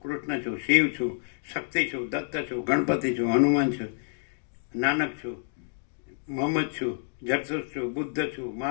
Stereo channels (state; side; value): silent; right; 59 dB below the other